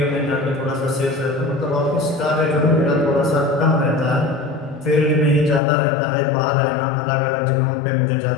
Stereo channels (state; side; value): drops out; right; at 5.6 s